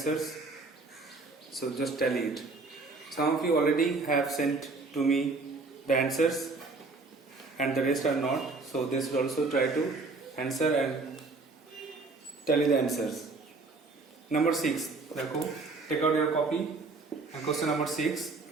So just tally it. Some of you already have sent to me the answers and the rest are not. So they should also try to answer and tally the answers. Number 6. Take out your copy and question number 6.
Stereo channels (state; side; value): quieter; left; 3.8 dB